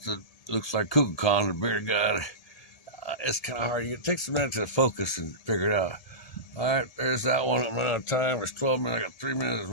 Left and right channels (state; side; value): late; right; 1.7 ms